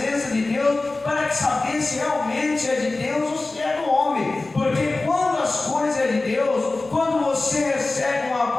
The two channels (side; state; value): right; quieter; 3.3 dB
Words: de Deus para saber se realmente é de Deus ou se é do homem. Porque quando as coisas é de Deus, quando você recebe uma